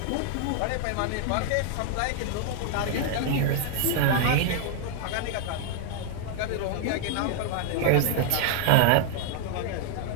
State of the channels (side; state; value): both; different; correlation 0.00